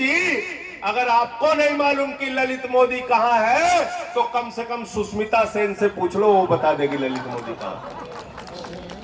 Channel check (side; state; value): both; identical; correlation 1.00